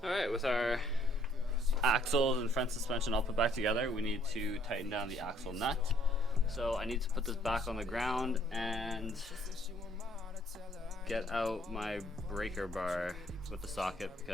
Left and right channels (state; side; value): normal; both; correlation 0.65